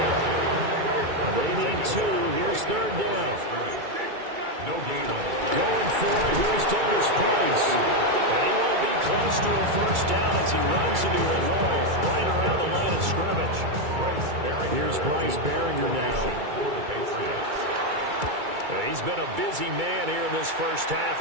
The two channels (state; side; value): late; left; 2.3 ms